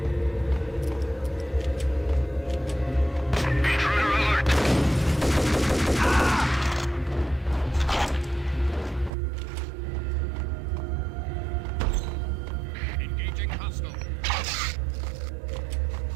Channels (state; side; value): drops out; left; at 9.1 s